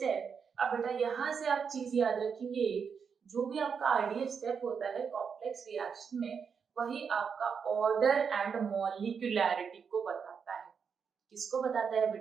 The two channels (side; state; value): left; quieter; 6.3 dB